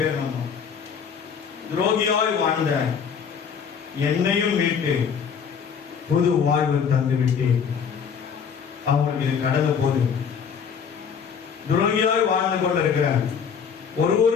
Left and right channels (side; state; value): right; quieter; 6.8 dB